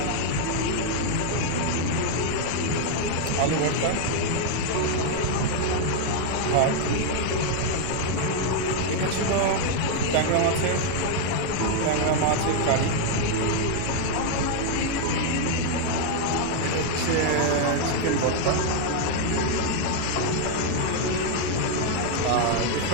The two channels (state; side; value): different; both; correlation 0.00